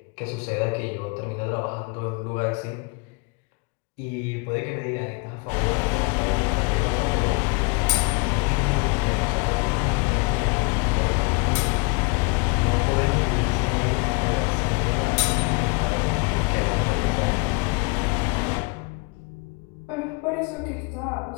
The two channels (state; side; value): quieter; right; 29.2 dB